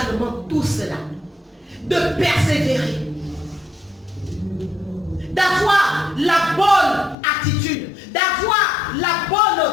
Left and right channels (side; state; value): right; drops out; at 7.2 s